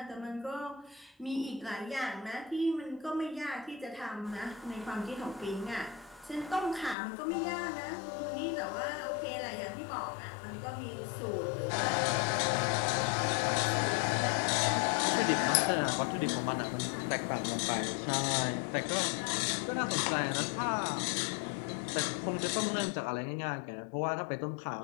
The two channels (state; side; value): drops out; right; at 7.0 s